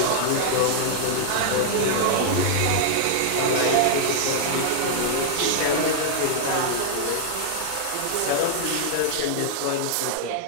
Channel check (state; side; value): different; both; correlation -0.01